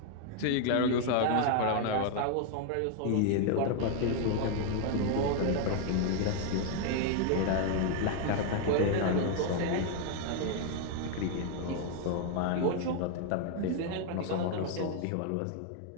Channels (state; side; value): different; both; correlation 0.00